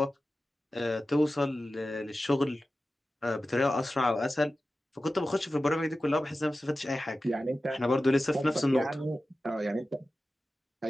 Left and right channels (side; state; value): both; normal; correlation 0.94